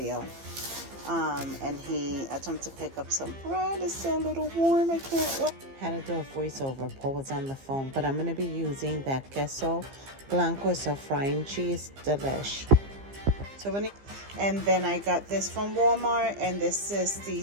And he attempted to pick up some bread. It's still a little warm. I can't wait. Had to do a voiceover. Paul was on the phone, but I'm going to be using that queso blanco. It's a frying cheese delish. And then I got this from Walmart, and this is the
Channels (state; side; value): late; left; 15 ms